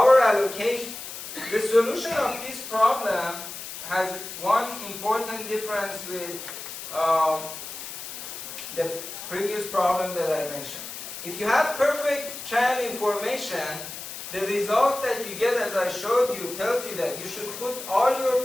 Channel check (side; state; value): left; noise; hiss, 10 dB below the sound